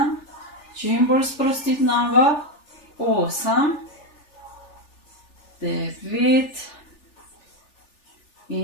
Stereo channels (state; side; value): late; right; 3.4 ms